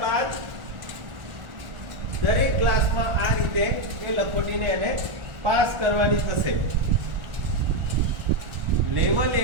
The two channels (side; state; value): left; late; 1.4 ms